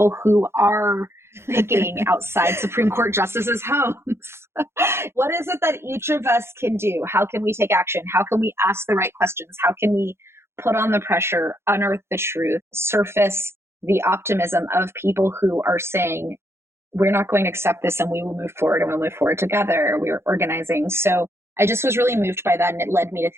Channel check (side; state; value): left; late; 0.12 ms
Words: who are picking outside Supreme Court justices' homes. What is it that each of us can do? How can we take action? How can we ask the right questions? How can we put on the pressure, unearth the truth, surface the optimism of people who are saying, we're not going to accept this and we will move forward, and we'll move forward together. We're organizing. So I just was really moved by that. And it led me to